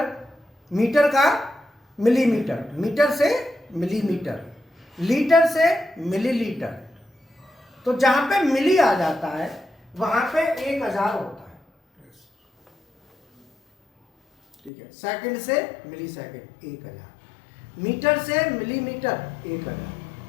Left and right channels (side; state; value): right; drops out; at 14.7 s